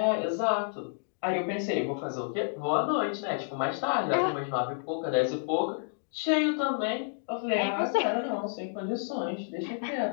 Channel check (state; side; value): silent; right; digital silence